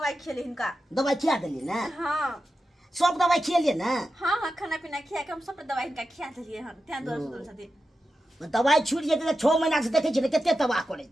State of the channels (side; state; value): both; normal; correlation 0.91